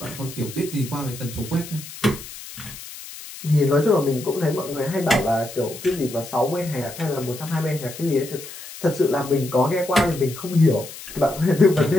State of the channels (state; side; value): noise; left; hiss, 14 dB below the sound